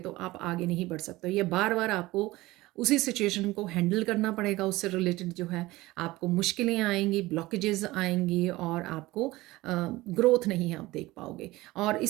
आप आगे नहीं बढ़ सकते। ये बार बार आपको उसी सिचुएशन को हैंडल करना पड़ेगा, उससे रिलेटेड जो है आपको मुश्किलें आएंगी, ब्लॉकेजेस आएंगी, और आपको ग्रोथ नहीं आप देख पाओगे। और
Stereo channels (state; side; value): quieter; left; 19.2 dB